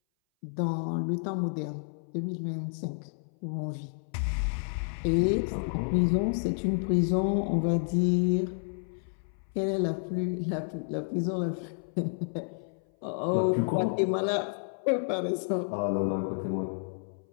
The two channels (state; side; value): silent; right; 58 dB below the other